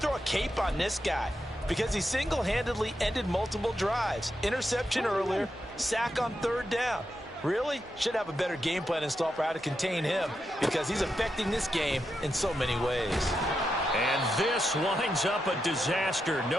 a cape on this guy because he single-handedly ended multiple drives. Interception earlier, sack on 3rd down. Really? Should have a better game plan installed for how to contain him because he's affecting this game in so many ways. And this winds up a disaster,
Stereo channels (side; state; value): both; normal; correlation 0.86